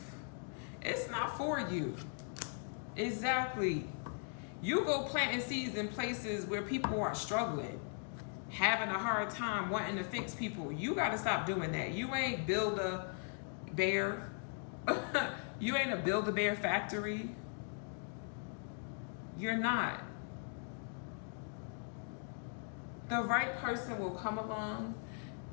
It's not for you. Exactly. You go planting seeds in places where people are struggling, having a hard time, wanting to fix people. You got to stop doing that. You ain't Build-A-Bear. You ain't a Build-A-Bear factory. You're not. The right person will come along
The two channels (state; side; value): silent; right; 52 dB below the other